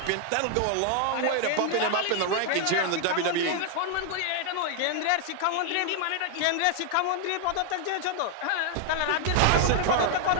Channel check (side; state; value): both; different; correlation 0.00